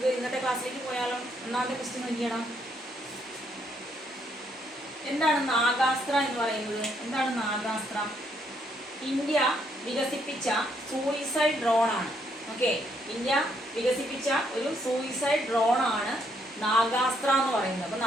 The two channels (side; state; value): both; normal; correlation 0.73